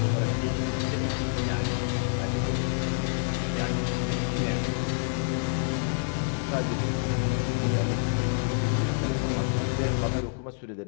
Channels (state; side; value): silent; right; digital silence